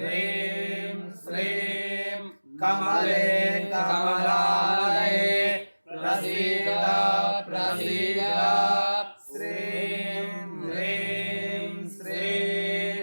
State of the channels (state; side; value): inverted; both; correlation -1.00